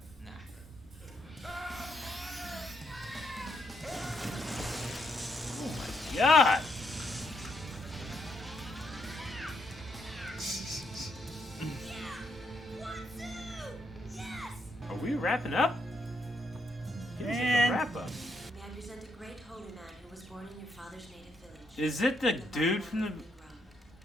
God. Are we wrapping up? Give us like a Man. wrap up. May I present a great holy man who was born born in your father's native village. Is it the dude from the...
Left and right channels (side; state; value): both; normal; correlation 0.78